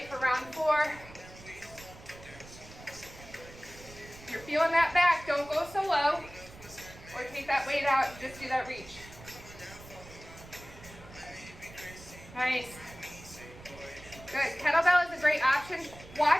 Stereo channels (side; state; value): right; noise; rumble, 18 dB below the sound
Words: for round 4. If you're feeling that back, don't go so low or take that weight out and just do that reach. Nice. Good. Kettlebell is a great option.